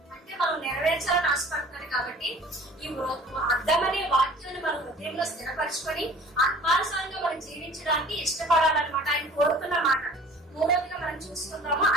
అంటే మనం నెరవేర్చాలని ఆశపడుతున్నాడు. కాబట్టి ఈ అర్థమనే వాక్యాన్ని మన హృదయంలో స్థిరపరచుకొని ఆత్మానుసారంగా మనం జీవించడానికి ఇష్టపడాలన్నమాట ఆయన కోరుతున్న మాట. మూడవదిగా మనం చూసుకుందాము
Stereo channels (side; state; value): both; normal; correlation 0.47